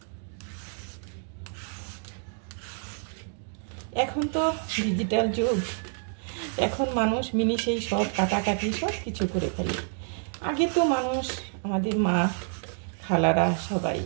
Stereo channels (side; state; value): left; silent; 55 dB below the other